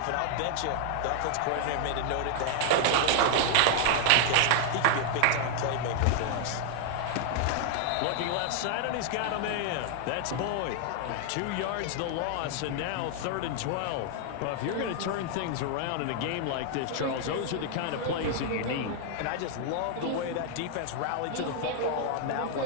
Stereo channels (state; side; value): different; both; correlation 0.00